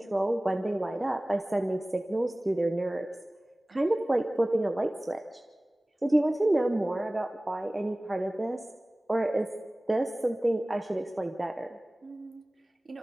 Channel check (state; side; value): normal; both; correlation 0.98